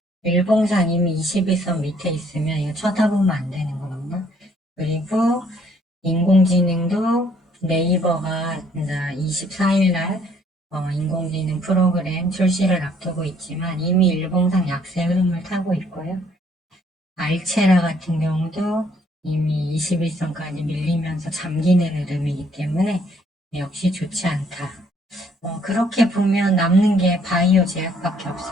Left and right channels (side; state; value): both; normal; correlation 0.64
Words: 일봉상 이미 21선 밑에 있으면 이거 쳐다보면 안 되는 겁니다. 그리고 인공지능도 네이버가 24일날 인공지능 프로그램 출시를 앞두고 있지만 이미 일봉상 약세 흐름을 타고 있고요. 알체라 같은 경우도 이미 21선까지 밀리면서 잠기는 흐름이기 때문에 역시 좋지 않다. 그렇게 보면 남는 게 바이오 제약밖에